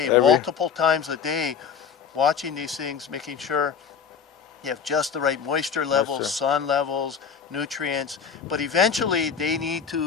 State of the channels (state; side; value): quieter; right; 6.7 dB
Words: multiple times a day, watching these things, making sure you have just the right moisture levels, sun levels, nutrients. But eventually, they need